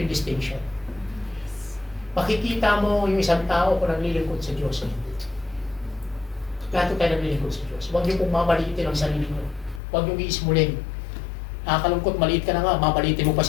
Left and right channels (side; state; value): right; drops out; at 9.8 s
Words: yung distinction. Makikita mo yung isang tao kung naglilingkod sa Diyos o hindi. Lahat tayo naglilingkod sa Diyos. Huwag niyo pong mamalitin ang sarili niyo. Huwag niyo iismulin. Nakakalungkot, maliit ka na nga, mamalitin mo pa